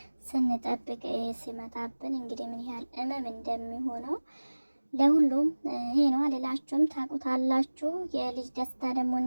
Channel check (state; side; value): inverted; both; correlation -1.00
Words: ስንጠብቅ ሲመጣብን እንግዲህ ምን ያህል እመም እንደሚሆነው ለሁሉም ይሄ ነው አልላችሁም። ታውቁታላችሁ። የልጅ ደስታ ደግሞ